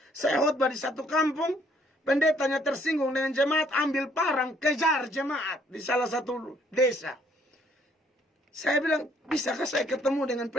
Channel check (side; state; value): both; normal; correlation 0.65